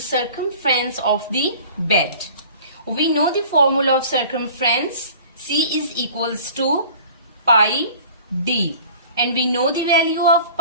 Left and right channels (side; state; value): both; inverted; correlation -0.46